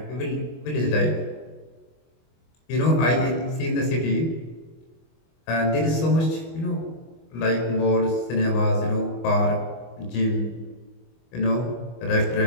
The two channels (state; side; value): late; right; 25 ms